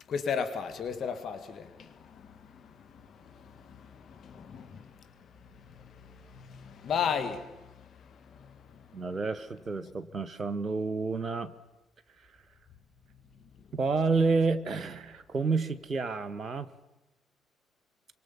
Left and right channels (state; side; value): normal; both; correlation 0.74